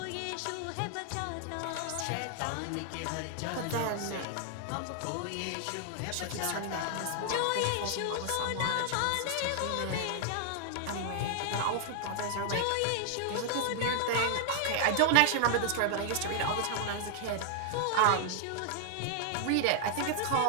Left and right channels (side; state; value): both; different; correlation 0.00